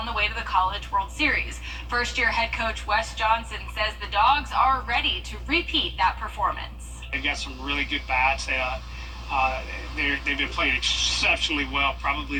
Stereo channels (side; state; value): both; identical; correlation 1.00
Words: the way to the College World Series. First-year head coach Wes Johnson says the Dogs are ready to repeat that performance. They've got some really good bats. They've been playing exceptionally well, probably